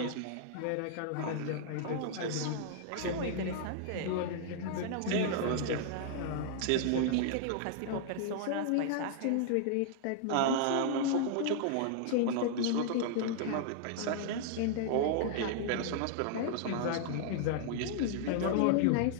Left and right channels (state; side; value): different; both; correlation -0.01